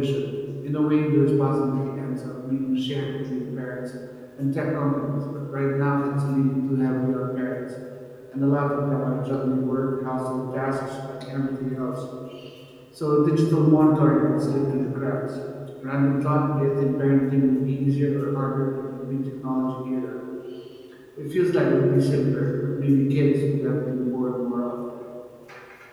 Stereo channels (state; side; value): identical; both; correlation 1.00